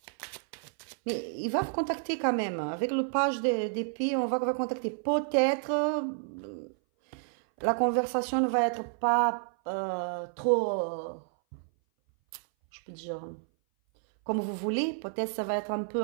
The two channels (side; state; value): left; silent; 57 dB below the other